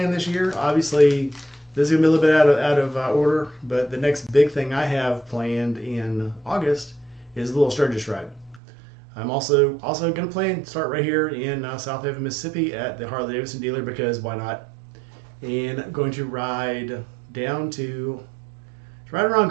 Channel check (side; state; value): left; drops out; at 8.6 s